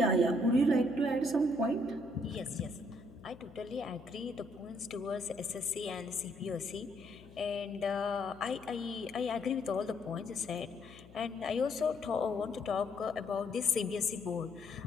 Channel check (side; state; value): left; noise; hum, 20 dB below the sound